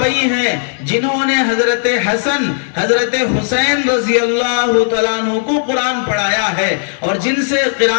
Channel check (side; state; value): right; silent; digital silence